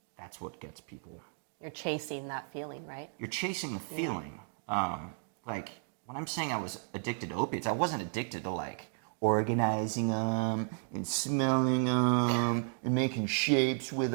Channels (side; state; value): left; silent; 55 dB below the other